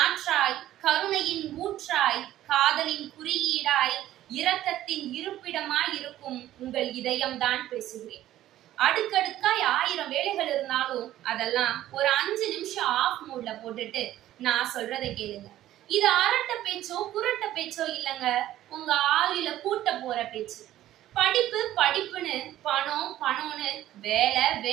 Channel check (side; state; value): left; quieter; 13.6 dB